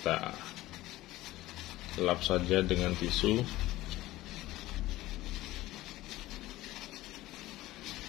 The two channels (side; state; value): right; quieter; 17.0 dB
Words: lap saja dengan tisu.